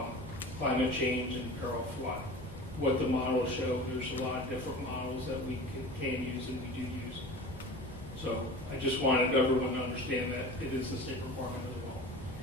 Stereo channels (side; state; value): both; normal; correlation 0.36